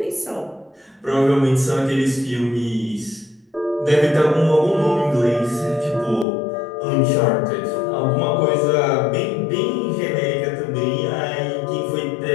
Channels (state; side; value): drops out; right; at 6.2 s